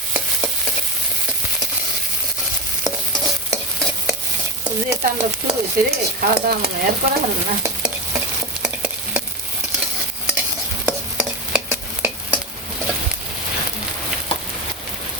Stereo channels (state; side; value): noise; left; hum, 26 dB below the sound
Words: যে তাণ্ডব শুরু হয়েছে রে, খাওয়া দাওয়া মনে হয় আর করা হবে না।